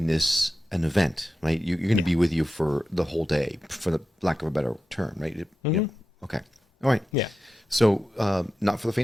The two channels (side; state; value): both; normal; correlation 0.91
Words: this an event, right? You're going to be with you for the whole day, for the lack of a better term, right? You know, okay. All right. Yeah. So, not for the